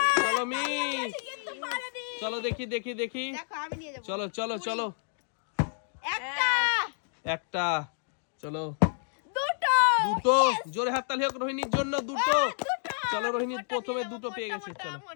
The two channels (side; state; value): right; silent; 56 dB below the other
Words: চলো মিস, চলো দেখি দেখি দেখি, চলো চলো চলো। একটা, চলো দুটো, জোরে হাততালি হোক রোহিণীর জন্য। দুটো, চলো রোহিণী প্রথমে দুটো পেয়ে গেছে। চলো